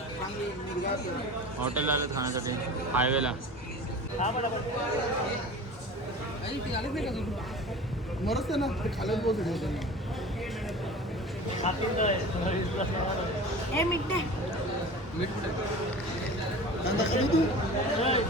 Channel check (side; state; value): both; normal; correlation 0.37